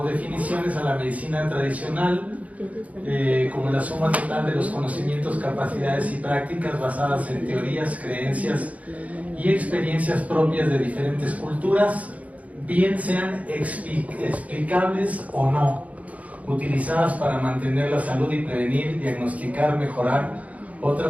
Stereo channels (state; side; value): late; left; 0.069 ms